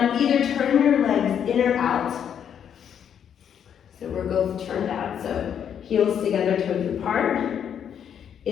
either turn your legs in or out. So we're both turned out. So heels together, toes apart.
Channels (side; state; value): right; quieter; 8.6 dB